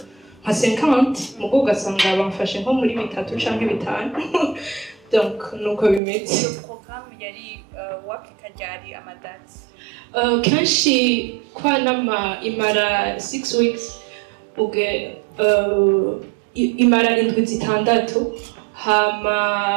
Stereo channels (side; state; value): left; drops out; at 6.0 s